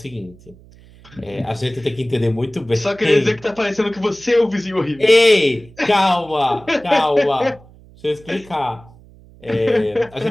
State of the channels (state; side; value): noise; right; hum, 24 dB below the sound